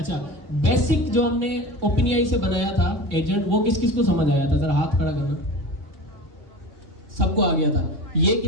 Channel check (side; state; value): left; late; 3.6 ms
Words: बेसिक जो हमने OpenAI से बनाया था एजेंट, वो किस किस को समझ आया था? जरा हाथ खड़ा करना। सबको आ गया था। ये